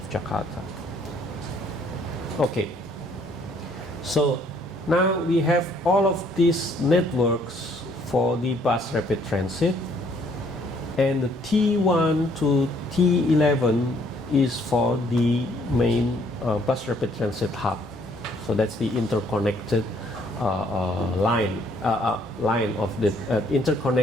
Jakarta. Okay, so now we have all of these networks for the bus rapid transit, and the T1 to T11 is for the main bus rapid transit hub. So that's the interconnected line of the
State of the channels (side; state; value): both; normal; correlation 0.64